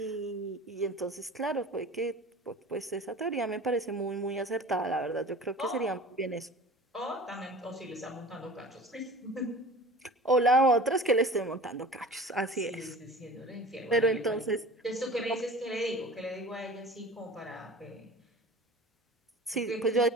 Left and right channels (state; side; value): normal; both; correlation 0.40